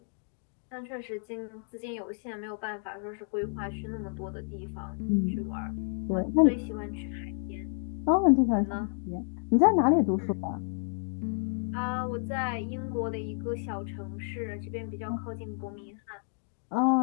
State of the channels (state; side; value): silent; right; 57 dB below the other